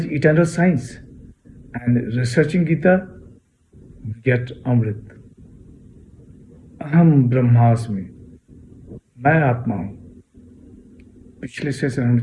eternal science and researching Gita गेट अमृत। अहम ब्रह्मास्मि, मैं आत्मा हूं। पिछले सेशन हमने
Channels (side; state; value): both; identical; correlation 1.00